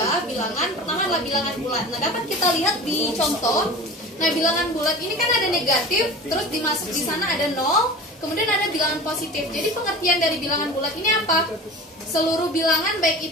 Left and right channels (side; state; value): both; normal; correlation 0.35